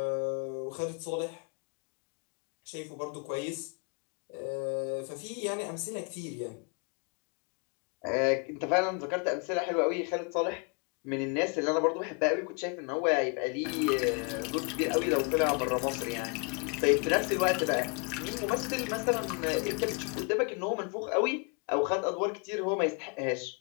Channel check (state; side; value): quieter; right; 36.1 dB